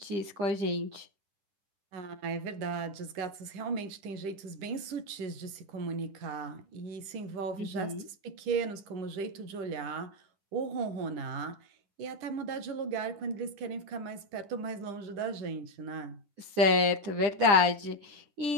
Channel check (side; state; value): left; late; 10 ms